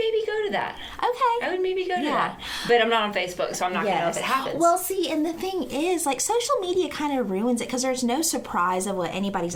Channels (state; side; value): identical; both; correlation 1.00